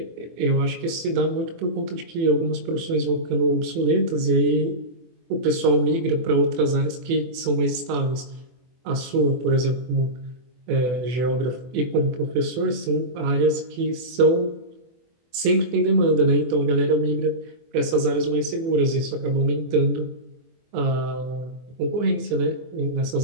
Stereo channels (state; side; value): late; left; 24 ms